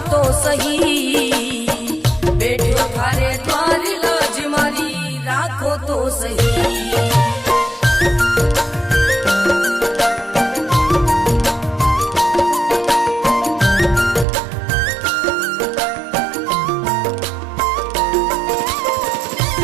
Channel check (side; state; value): left; drops out; at 14.2 s